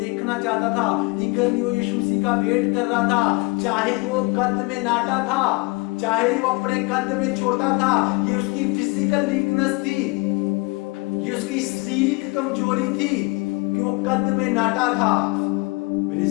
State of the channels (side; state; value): right; quieter; 27.1 dB